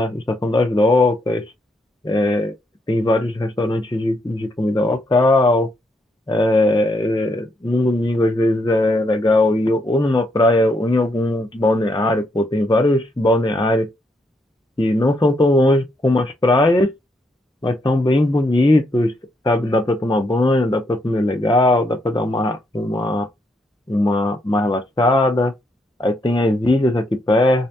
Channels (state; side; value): normal; both; correlation 0.76